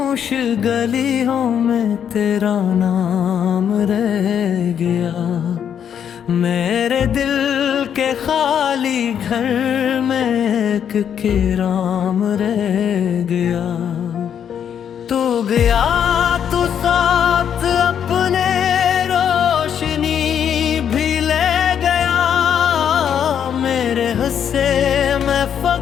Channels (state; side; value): quieter; right; 8.6 dB